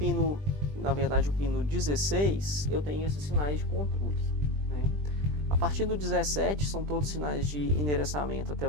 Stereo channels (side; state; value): left; late; 20 ms